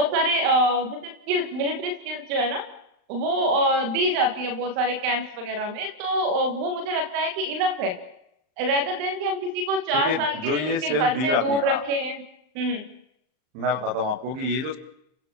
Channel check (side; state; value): left; late; 39 ms